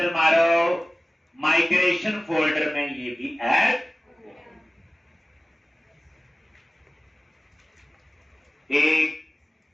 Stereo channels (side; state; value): both; normal; correlation 0.96